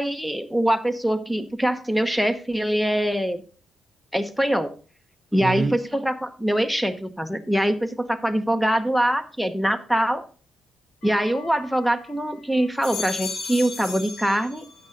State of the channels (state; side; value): normal; both; correlation 0.96